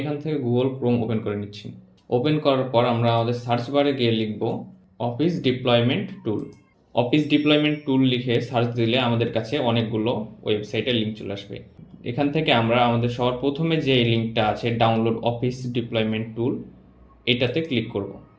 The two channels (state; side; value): identical; both; correlation 1.00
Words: এখান থেকে গুগল ক্রোম ওপেন করে নিচ্ছি। ওপেন করার পর আমরা আমাদের সার্চ বারে গিয়ে লিখব অফিস ডিপ্লয়মেন্ট টুল। অফিস ডিপ্লয়মেন্ট টুল লিখে সার্চ দিলে আমাদের কাছে অনেকগুলো ওয়েবসাইটের লিঙ্ক চলে আসবে। এখান থেকে আমরা আমাদের সবার প্রথমে যে লিঙ্কটা আছে ডাউনলোড অফিস ডিপ্লয়মেন্ট টুল, এটাতে ক্লিক করব।